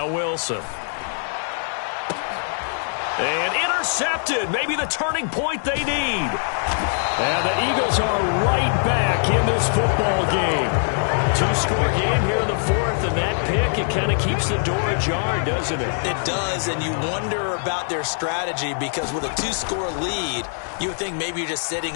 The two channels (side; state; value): right; silent; digital silence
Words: Wilson. And intercepted. Maybe the turning point they need. And the Eagles are right back in this football game. Two-score game here in the fourth, and that pick, it kind of keeps the door ajar, doesn't it? It does, and you wonder about their strategy because with a two-score lead, you would think maybe you're just sitting